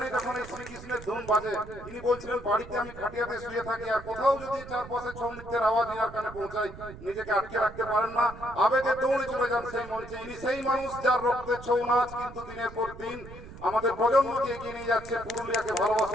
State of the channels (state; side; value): noise; right; rumble, 15 dB below the sound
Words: যখন এই শ্রীকৃষ্ণের ধুন বাজে ইনি বলছিলেন বাড়িতে আমি খাটিয়াতে শুয়ে থাকি আর কোথাও যদি চারপাশে ছৌ নৃত্যের আওয়াজ ইনার কানে পৌঁছায় নিজেকে আটকে রাখতে পারেন না, আবেগে দৌড়ে চলে যান সেই মঞ্চে। ইনি সেই মানুষ যার রক্তে ছৌ নাচ কিন্তু দিনের পর দিন আমাদের প্রজন্মকে এগিয়ে নিয়ে যাচ্ছে, পুরুলিয়াকে